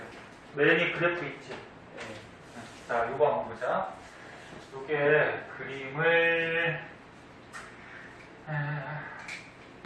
맨이 그래프 있지? 자, 요거 한번 보자. 요게 그림을,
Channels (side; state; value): both; identical; correlation 1.00